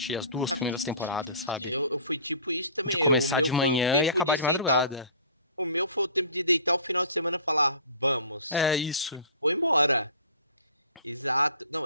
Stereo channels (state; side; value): inverted; both; correlation -0.44